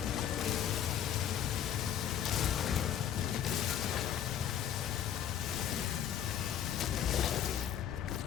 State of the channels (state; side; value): quieter; right; 9.8 dB